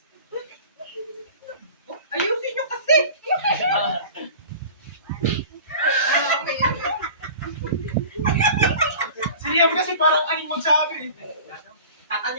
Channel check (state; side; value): inverted; both; correlation -0.41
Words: Ayusin nyo kasi! Si Liam kasi parang aning magsabi.